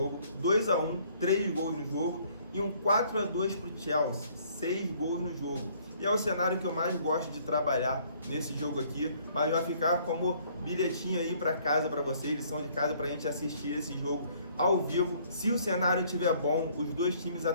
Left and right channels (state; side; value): inverted; both; correlation -0.61